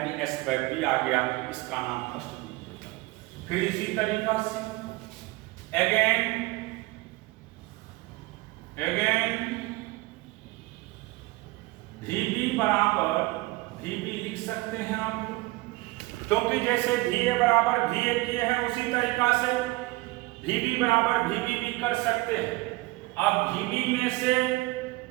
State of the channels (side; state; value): left; quieter; 21.4 dB